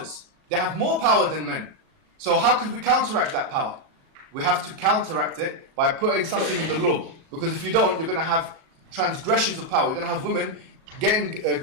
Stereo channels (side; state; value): left; late; 37 ms